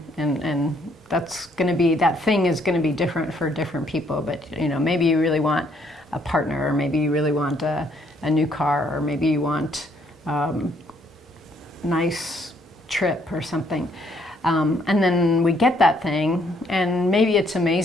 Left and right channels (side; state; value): both; normal; correlation 0.68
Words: and that's going to be, that thing is going to be different for different people, but you know, maybe you really want a partner, or maybe you really want a new car, or maybe you want nice trip or something. And then we get that thing, and maybe it's